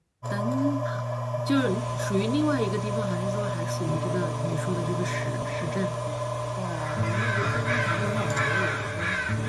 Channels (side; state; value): both; identical; correlation 1.00